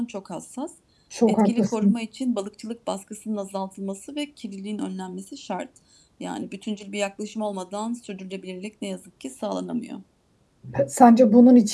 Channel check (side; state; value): both; identical; correlation 1.00